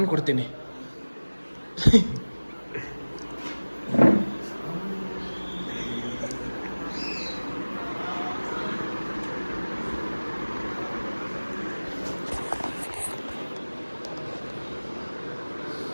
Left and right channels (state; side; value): inverted; both; correlation -1.00